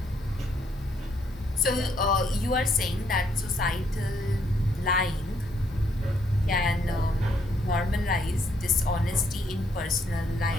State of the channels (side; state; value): both; normal; correlation 0.72